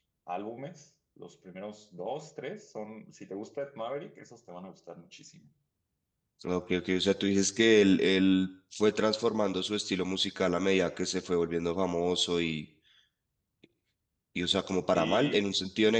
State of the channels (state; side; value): identical; both; correlation 1.00